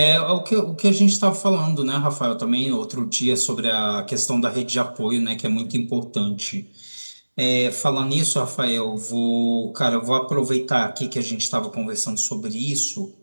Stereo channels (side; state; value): both; inverted; correlation -1.00